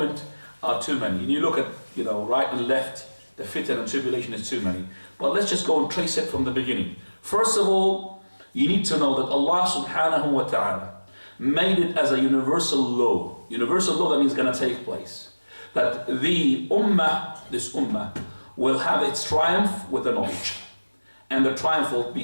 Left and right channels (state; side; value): inverted; both; correlation -1.00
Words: are too many. And you look at, right and left, the fitan and tribulation is too many. But let's just go and trace it from the beginning. First of all, you need to know that Allah subhanahu wa ta'ala made it as a universal law. Universal law, that means going to take place. That the ummah, this ummah, will have its triumph with the knowledge. And the triumph will